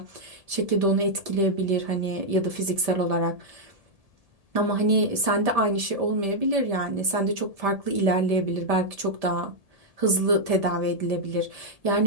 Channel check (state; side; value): late; left; 1.7 ms